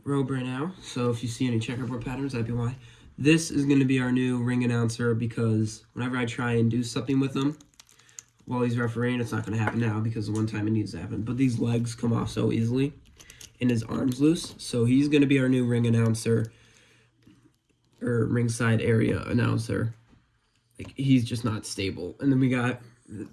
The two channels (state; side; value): identical; both; correlation 1.00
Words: a robe right now, so if you see any checkerboard patterns, that'd be why. This is going to be our new ring announcer because whenever I try and do something with him while he's refereeing, it's not going to happen now because the one time it needs to happen. But these legs come off so easily and his arm's loose, so he's going to be our new ring announcer or ringside area announcer. Like, he's just not stable. And then we got